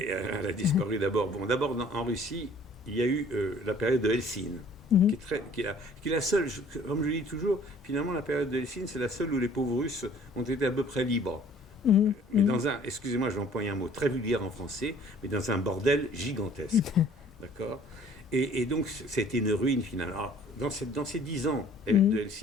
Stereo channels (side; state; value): both; normal; correlation 0.54